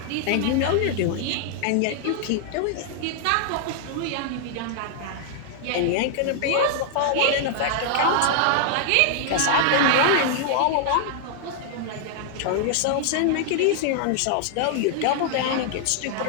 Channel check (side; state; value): both; different; correlation -0.01